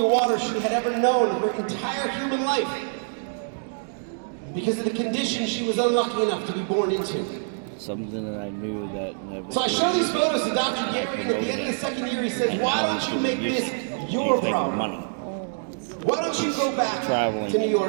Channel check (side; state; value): left; silent; digital silence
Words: water she had ever known in her entire human life. Because of the condition she was unlucky enough to be born into. Something that I knew that never. So I show these photos to Dr. Gary, and at the end of the second year he says, why don't you make this your problem? Money. Why don't you go back Traveling to New